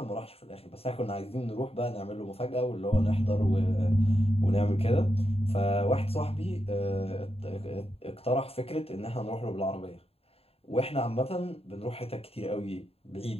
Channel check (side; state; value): right; late; 0.28 ms